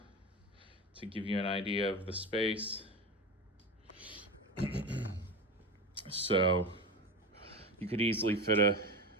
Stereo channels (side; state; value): both; normal; correlation 0.24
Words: to give you an idea of the space. So you could easily fit